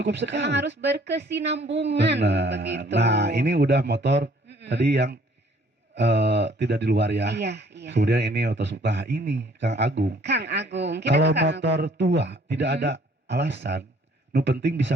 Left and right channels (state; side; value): normal; both; correlation 0.59